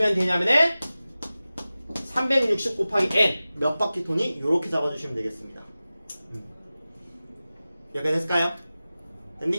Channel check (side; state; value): both; inverted; correlation -0.96